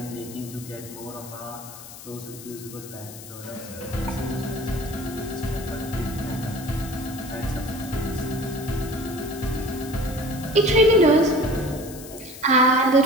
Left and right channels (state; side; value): noise; left; hiss, 15 dB below the sound